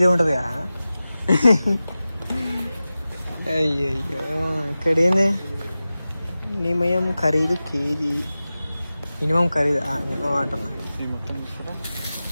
ఉంటుంది కదా. అయ్యయ్యో, ఇక్కడ ఏంది నిమయం ఖరీదు కేజీ. మినిమం ఖరీదు మినిమం అంటున్నా.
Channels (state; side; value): inverted; both; correlation -0.95